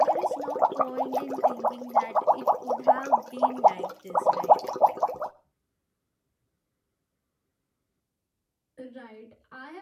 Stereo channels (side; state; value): both; identical; correlation 1.00